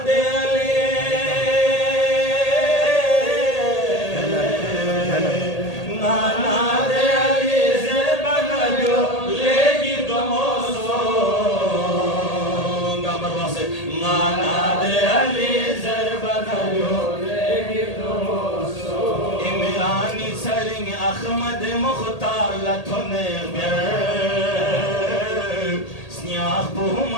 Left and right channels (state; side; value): late; right; 1.8 ms